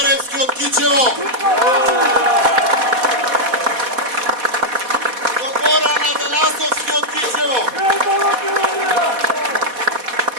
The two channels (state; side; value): late; left; 4.1 ms